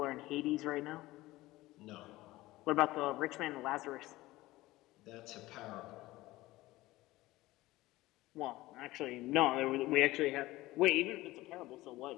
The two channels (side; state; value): right; quieter; 18.2 dB